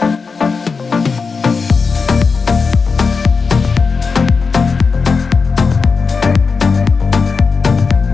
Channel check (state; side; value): quieter; right; 4.9 dB